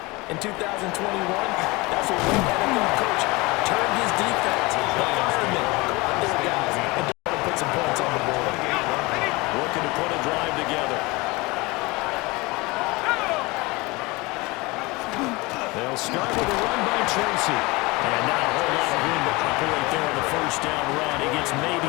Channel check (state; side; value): quieter; right; 23.9 dB